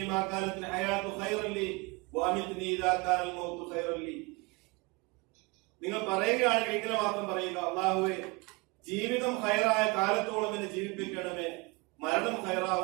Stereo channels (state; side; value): quieter; left; 26.6 dB